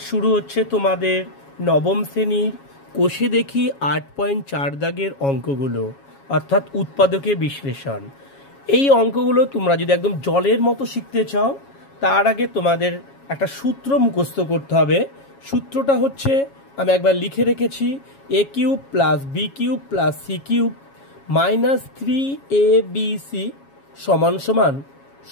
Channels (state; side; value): late; right; 7.3 ms